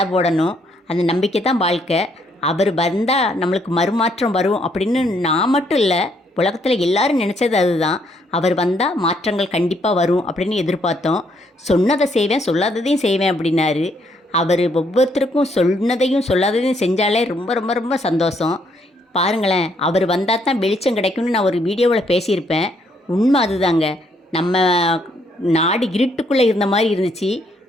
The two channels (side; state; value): both; normal; correlation 0.71